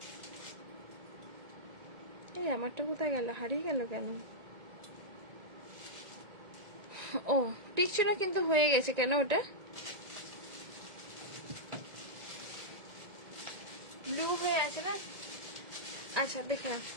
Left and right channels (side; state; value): left; late; 1.9 ms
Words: এই আমারটা কোথায় গেল, হারিয়ে গেল কেন? ও টিকছে না কিন্তু হয়ে গেছে কেন ওটা? ব্লু হয়ে আছে না? আচ্ছা দেখে নাও,